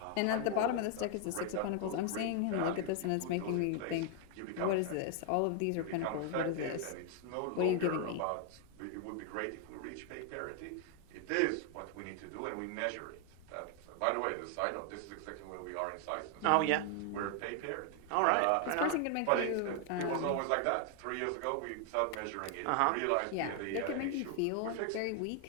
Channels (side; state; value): both; different; correlation 0.00